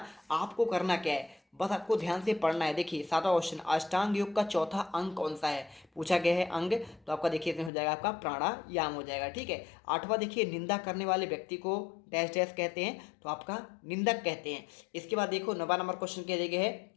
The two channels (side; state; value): right; drops out; at 7.7 s